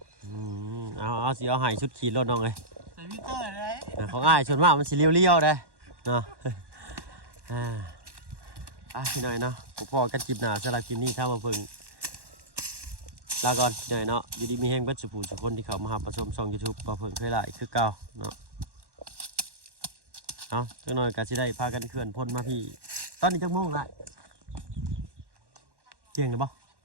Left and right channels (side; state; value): left; late; 1.1 ms